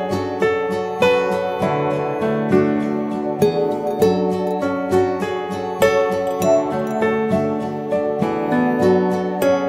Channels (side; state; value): both; identical; correlation 1.00